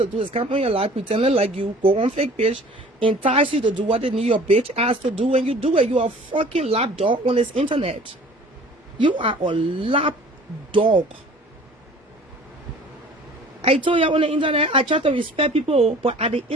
do is come on your life, pretending like you, go on fake page, entice you to do what they need your bitch ass to do, and you do it. You are a fucking lap dog on this internet. You are a lap dog. I told you on the internet, I try to respect people, but at the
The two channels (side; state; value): both; normal; correlation 0.48